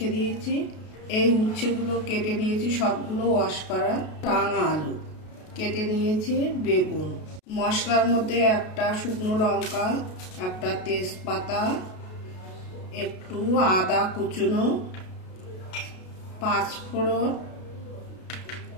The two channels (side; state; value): right; late; 33 ms